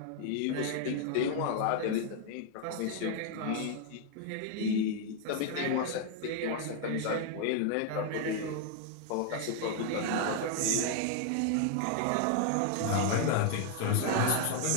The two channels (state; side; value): different; both; correlation 0.00